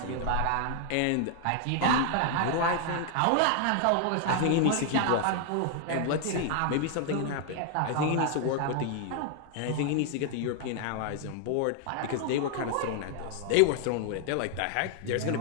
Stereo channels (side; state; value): both; different; correlation 0.00